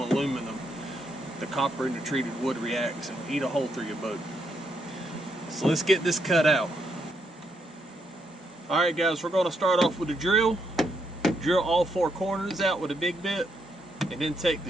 aluminum. The copper in the treated wood reacts and eat a hole through your boat. So let's get this cut out. Alright guys, we're going to start off with a drill. Drill all 4 corners out with a big bit. And then take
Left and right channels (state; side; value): normal; both; correlation 0.77